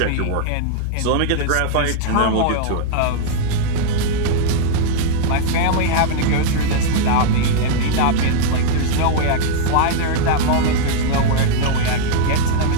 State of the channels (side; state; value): both; different; correlation -0.01